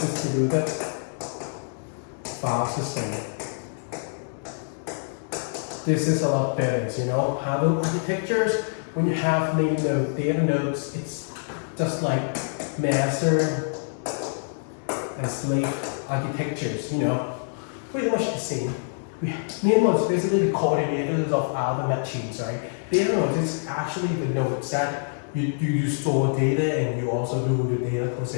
file system. This is a lot better, you know. Handle architectures, when you have name node, data nodes, it's just like master and slave architectures, you know. Pretty much the same. Name nodes basically the coordinators of other machines, right? Data nodes is actually the nodes that you store data and you also do the data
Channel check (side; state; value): right; silent; digital silence